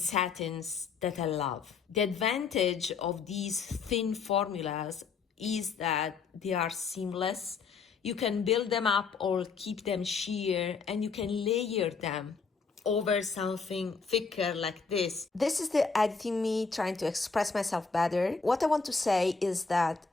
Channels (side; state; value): right; quieter; 5.1 dB